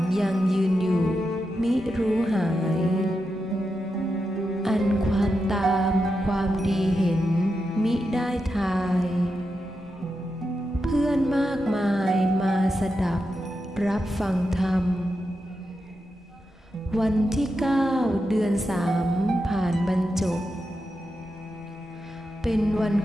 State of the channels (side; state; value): both; normal; correlation 0.87